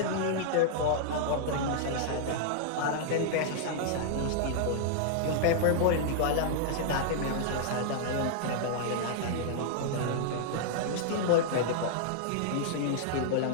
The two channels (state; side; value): different; both; correlation -0.01